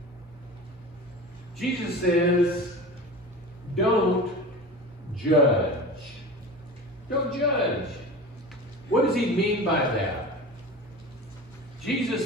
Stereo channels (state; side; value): normal; both; correlation 0.33